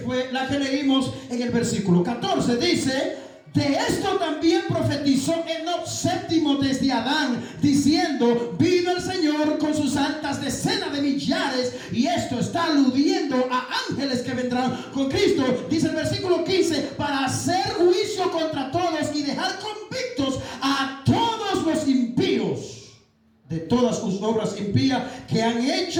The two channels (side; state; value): both; identical; correlation 1.00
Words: la que leímos en el versículo 14. Dice: de esto también profetizó Enoc séptimo desde Adán, diciendo: vino el Señor con sus altas decenas de millares. Y esto está aludiendo a ángeles que vendrán con Cristo. Dice el versículo 15: para hacer juicio contra todos y dejar convictos a todos los impíos de todas sus obras impías que han